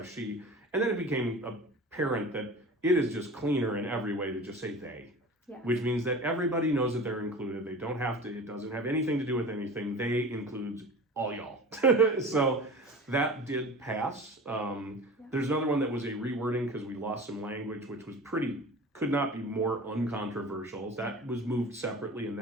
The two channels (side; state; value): both; normal; correlation 0.36